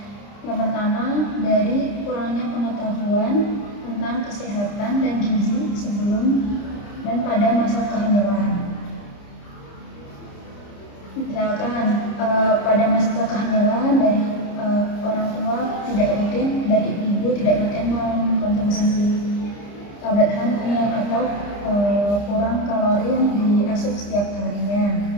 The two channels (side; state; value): right; late; 30 ms